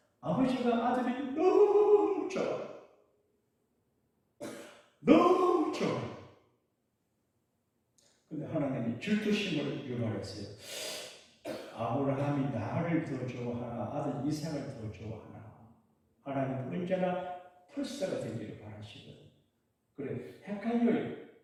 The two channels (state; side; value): identical; both; correlation 1.00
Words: 아버지가 아들이 너무 좋아. 너무 좋아. 근데 하나님이 질투심을 유발했어요. 아브라함이 나를 더 좋아하나 아들 이삭을 더 좋아하나. 하나님은 언제나 풀사가 되기를 바라시거든요. 그래, 헷갈려요.